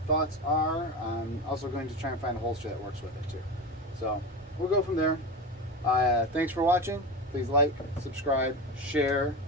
thoughts are. I'm also going to try and find a holster that works with it too. So, we'll go from there. Thanks for watching. Please like, subscribe, share.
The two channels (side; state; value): both; normal; correlation 0.23